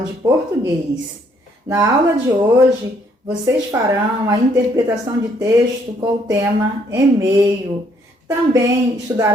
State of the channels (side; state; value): both; normal; correlation 0.67